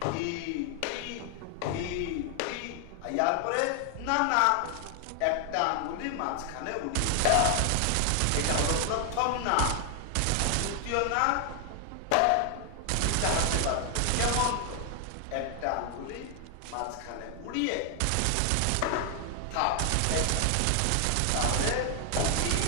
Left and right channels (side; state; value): both; different; correlation 0.00